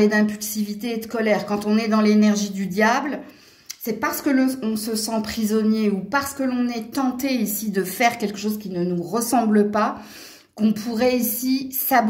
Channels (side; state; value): both; identical; correlation 1.00